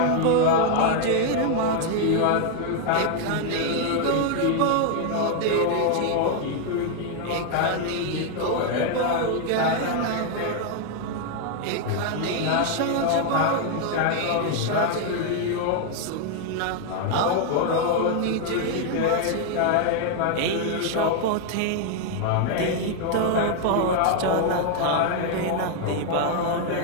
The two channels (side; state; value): both; different; correlation 0.00